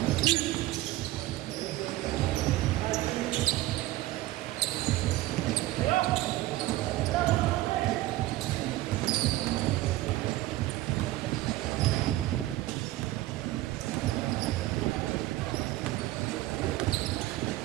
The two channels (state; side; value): quieter; left; 16.6 dB